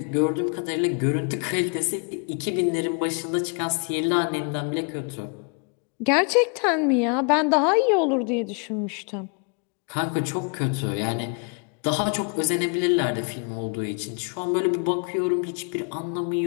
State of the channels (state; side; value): quieter; right; 37.7 dB